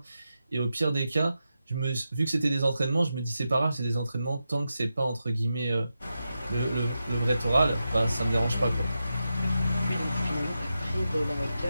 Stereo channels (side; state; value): both; inverted; correlation -0.89